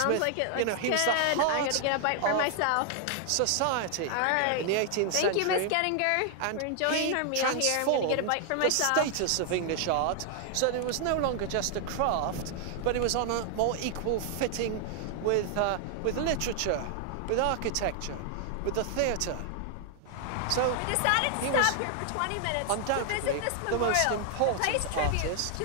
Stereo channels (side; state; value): both; different; correlation 0.00